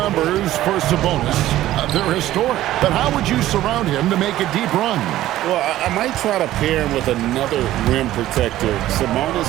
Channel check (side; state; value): left; quieter; 14.4 dB